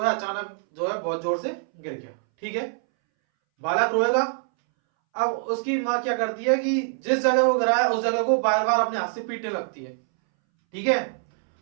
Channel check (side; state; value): left; silent; 62 dB below the other